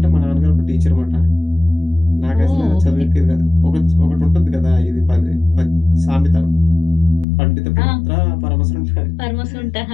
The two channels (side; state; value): right; drops out; at 7.2 s